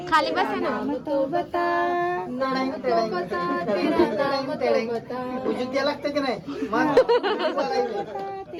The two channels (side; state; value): both; identical; correlation 1.00